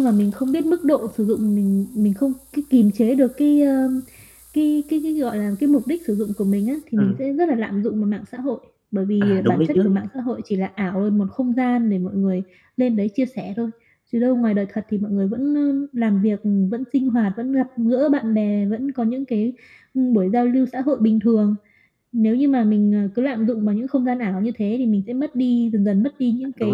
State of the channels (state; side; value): identical; both; correlation 1.00